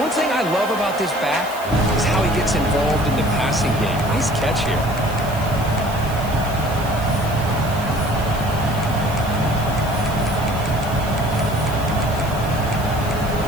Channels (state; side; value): noise; right; hiss, 16 dB below the sound